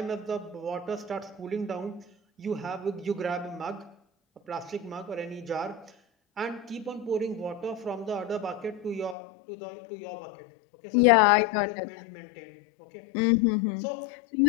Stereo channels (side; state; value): right; drops out; at 9.2 s